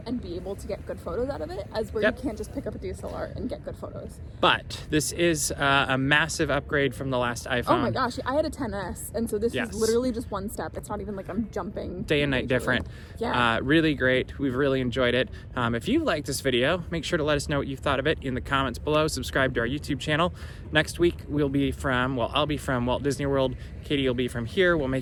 and be able to get good photos out of it, as where you can't just pick up a DSLR and get good photos. But this is a massive upgrade from the last iPhone. Oh my gosh, I had a 10S, and so this is literally just one step. It's not even like I'm jumping. Day and night different. Really great. We've really enjoyed it. If you liked this video, make sure to let us know what you thought of it in the comments below. Subscribe to our YouTube channel. Next week, I'll be from Walt Disney World. Katie will be from here. We'll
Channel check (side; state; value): both; identical; correlation 1.00